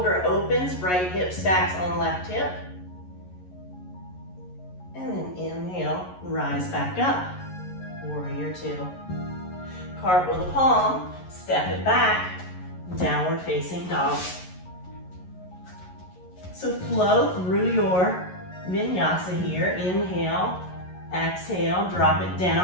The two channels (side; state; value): right; late; 11 ms